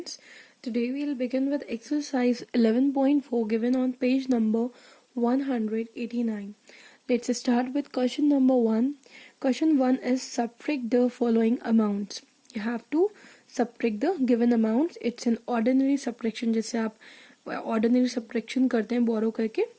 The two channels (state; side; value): identical; both; correlation 1.00